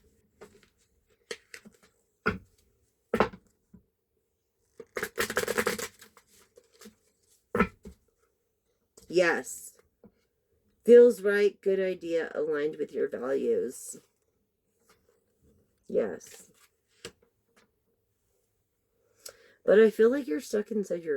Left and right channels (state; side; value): identical; both; correlation 1.00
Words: yes. Feels right, good idea, aligned with your values. Yes. But I feel like you're stuck inside